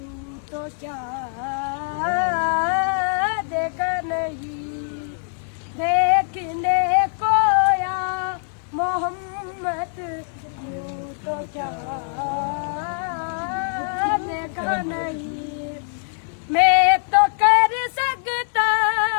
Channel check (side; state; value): right; silent; 63 dB below the other